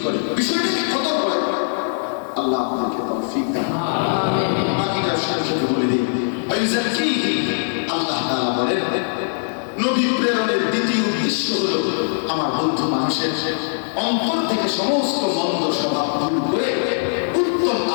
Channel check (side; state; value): right; silent; digital silence